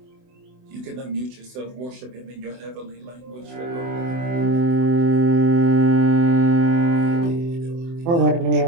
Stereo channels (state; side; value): late; left; 24 ms